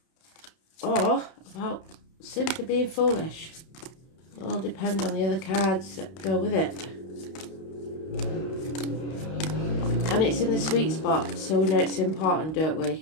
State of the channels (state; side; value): late; right; 31 ms